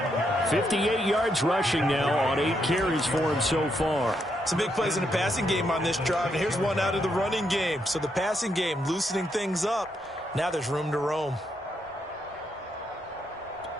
58 yards rushing now on 8 carries for him so far. Some big plays in the passing game on this drive, and here's one out of the running game. So the passing game loosening things up. Now there's room to roam.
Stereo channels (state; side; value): normal; both; correlation 0.79